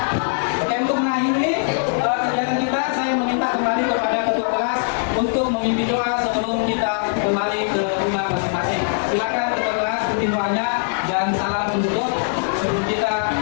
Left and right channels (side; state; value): right; silent; 65 dB below the other